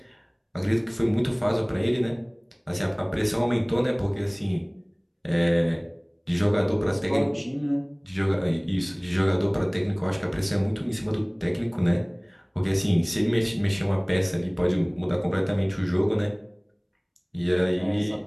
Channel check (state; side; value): identical; both; correlation 1.00